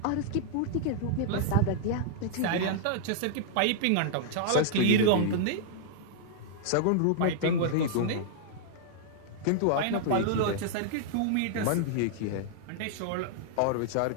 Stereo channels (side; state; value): both; different; correlation -0.01